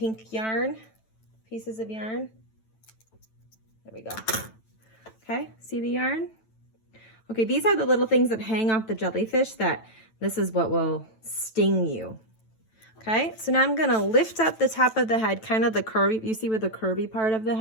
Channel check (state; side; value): late; right; 9.1 ms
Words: yarn, pieces of yarn. There we go. Okay, see the yarn? Okay, these are the little things that hang off the jellyfish that this is what will sting you. Okay, so now I'm going to lift up the top of the head, kind of the curvy, you see where the curvy part of the